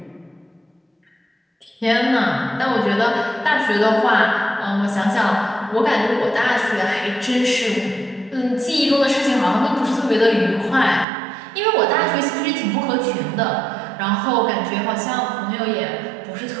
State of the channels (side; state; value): left; drops out; at 11.1 s